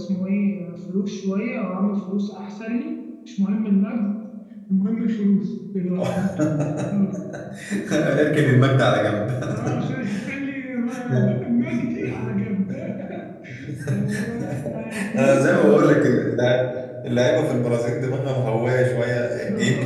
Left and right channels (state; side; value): identical; both; correlation 1.00